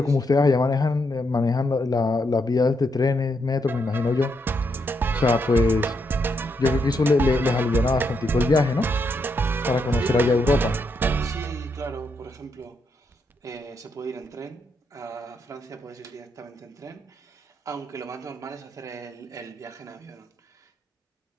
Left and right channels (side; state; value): both; normal; correlation 0.79